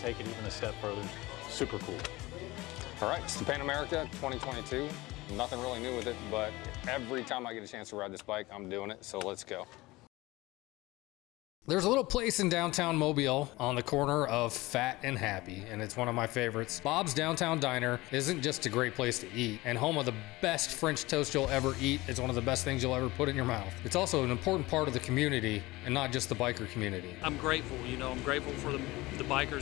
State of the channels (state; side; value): quieter; right; 20.4 dB